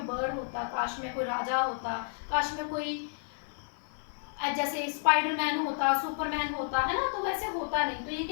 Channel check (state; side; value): silent; right; 57 dB below the other